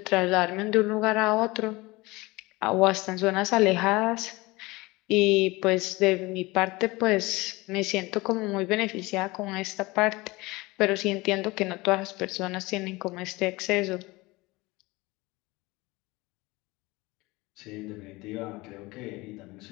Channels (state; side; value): quieter; right; 22.2 dB